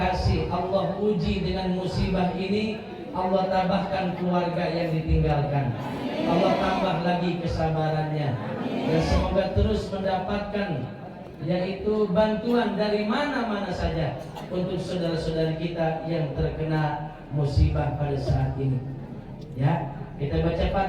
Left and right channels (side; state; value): both; identical; correlation 1.00